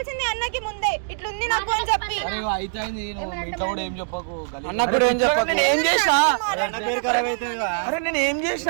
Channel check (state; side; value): silent; left; digital silence